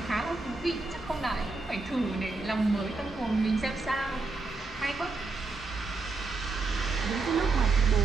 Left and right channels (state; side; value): quieter; left; 3.6 dB